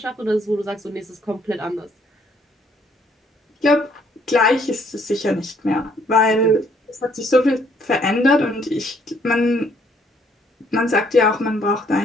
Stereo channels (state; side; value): normal; both; correlation 0.66